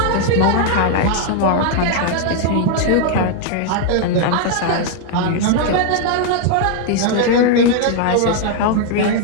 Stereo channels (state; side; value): different; both; correlation 0.00